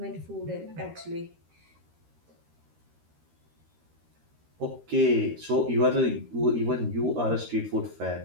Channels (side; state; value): left; late; 13 ms